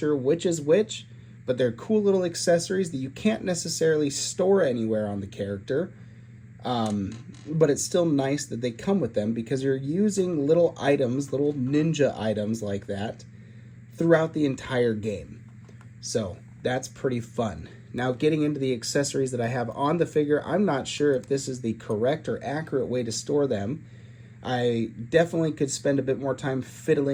which is which, but they're cool little accessories that you can't necessarily store anywhere on the character. But it's still nice that they come with them, because you're using little items, little ninja items like that throughout the entire game. So that's pretty fun. Now, getting into the accessories that I have on the figure, I'm not sure if this is the correct or accurate way to store them. I definitely could spend a bit more time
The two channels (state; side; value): identical; both; correlation 1.00